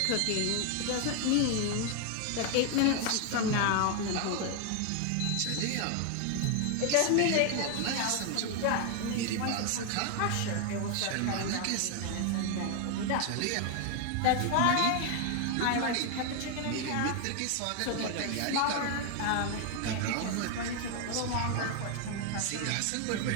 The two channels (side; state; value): both; different; correlation 0.00